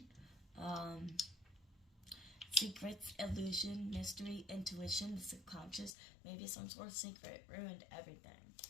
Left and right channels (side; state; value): right; drops out; at 6.0 s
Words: secrets, illusion, mystery, intuition, the subconscious, maybe some sort of secret, ruined everything.